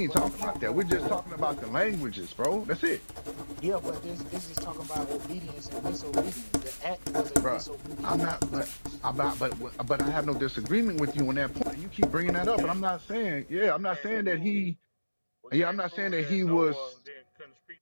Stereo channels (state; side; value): inverted; both; correlation -1.00